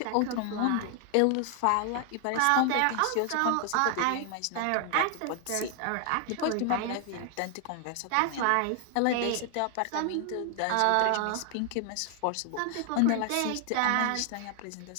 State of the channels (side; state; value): both; different; correlation 0.00